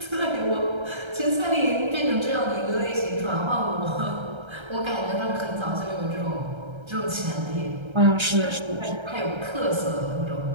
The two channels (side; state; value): left; late; 1.3 ms